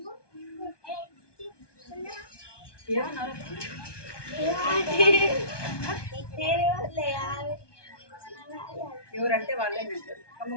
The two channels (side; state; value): right; late; 1.2 ms